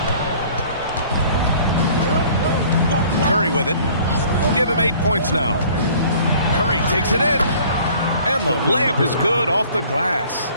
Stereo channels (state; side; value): inverted; both; correlation -0.52